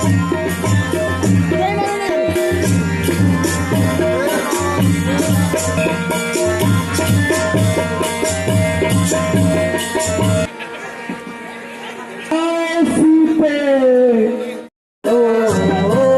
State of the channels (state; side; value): identical; both; correlation 1.00